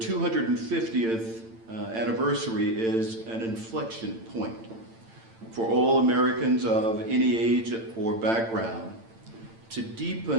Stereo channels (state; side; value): late; left; 8.9 ms